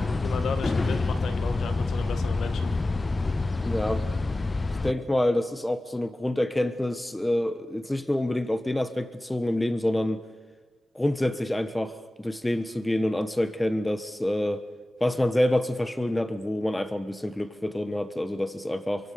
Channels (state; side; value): normal; both; correlation 0.96